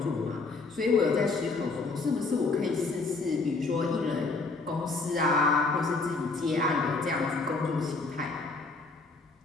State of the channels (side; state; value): right; quieter; 3.8 dB